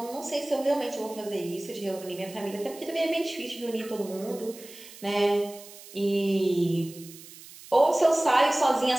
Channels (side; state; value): right; noise; hiss, 18 dB below the sound